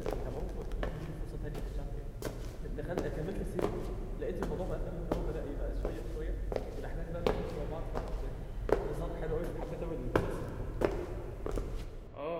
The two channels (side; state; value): both; identical; correlation 1.00